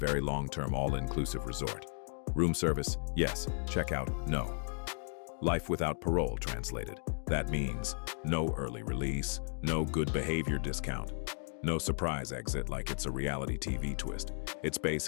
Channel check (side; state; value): right; silent; digital silence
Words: long-term all-inclusive resort. Room service, yes. Checkout, no. Life without parole translated. That means no early release, no good behavior discount, no surprise exit like it's a reality TV twist. It's